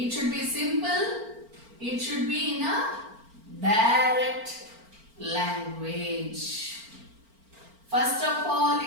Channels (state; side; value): late; left; 4.4 ms